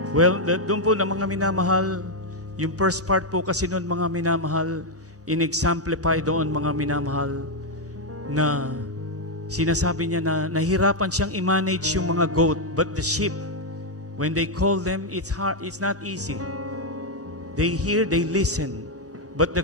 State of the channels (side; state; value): both; normal; correlation 0.01